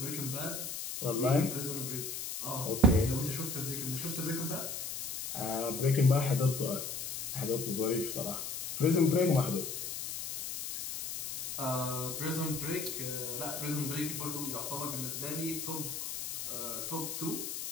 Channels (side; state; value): left; noise; hiss, 5 dB below the sound